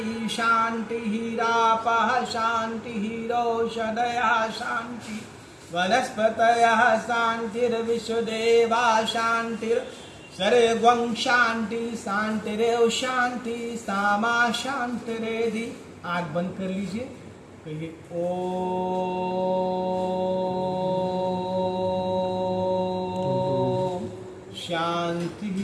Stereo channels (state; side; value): identical; both; correlation 1.00